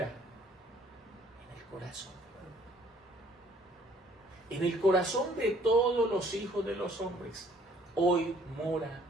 en el corazón. En el corazón de todos los hijos de los hombres, hoy mora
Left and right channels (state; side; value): normal; both; correlation 0.59